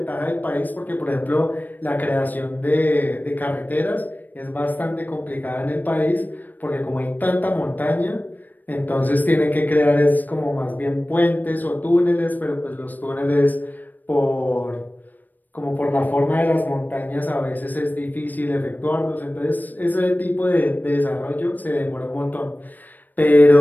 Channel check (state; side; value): late; right; 0.086 ms